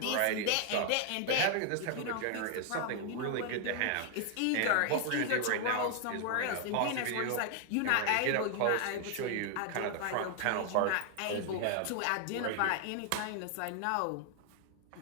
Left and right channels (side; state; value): both; different; correlation 0.00